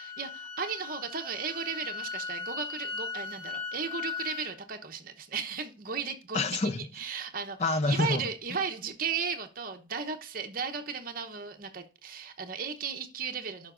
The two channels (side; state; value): both; normal; correlation 0.15